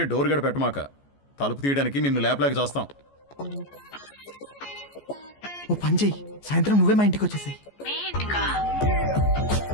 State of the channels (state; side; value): late; right; 14 ms